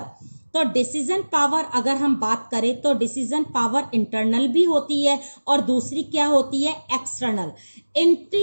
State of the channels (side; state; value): both; inverted; correlation -1.00